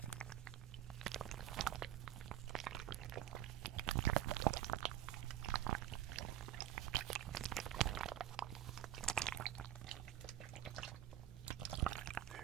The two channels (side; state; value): left; quieter; 12.3 dB